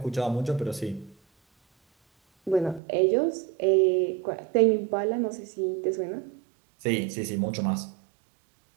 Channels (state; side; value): drops out; left; at 2.8 s